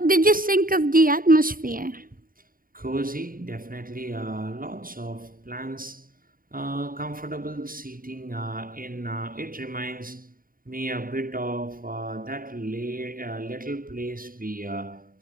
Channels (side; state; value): left; late; 0.41 ms